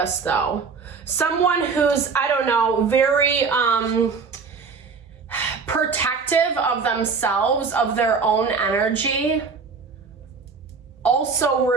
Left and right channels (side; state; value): left; quieter; 5.1 dB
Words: though. Someone who's, I don't know, very protective of themselves, of their own energy, also